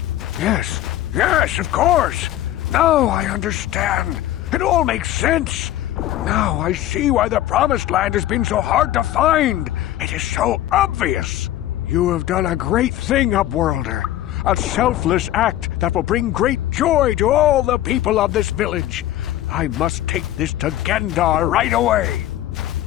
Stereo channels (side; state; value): right; quieter; 13.6 dB